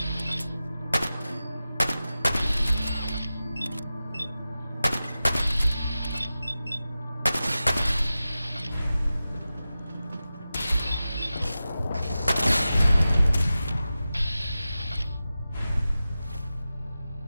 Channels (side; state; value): both; inverted; correlation -0.94